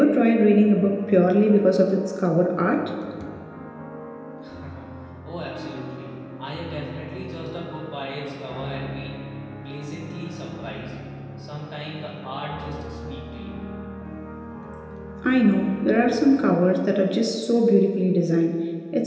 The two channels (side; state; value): both; identical; correlation 1.00